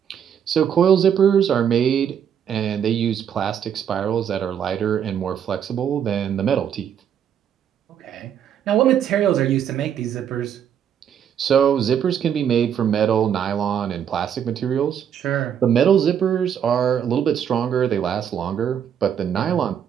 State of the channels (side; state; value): left; quieter; 8.7 dB